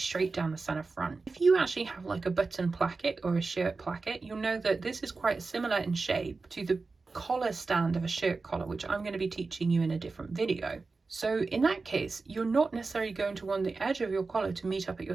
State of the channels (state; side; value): quieter; left; 4.0 dB